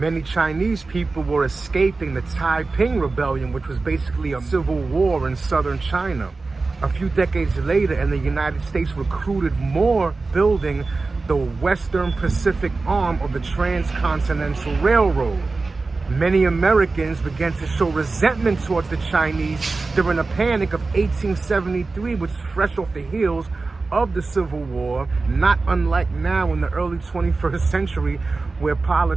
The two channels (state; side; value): quieter; left; 3.8 dB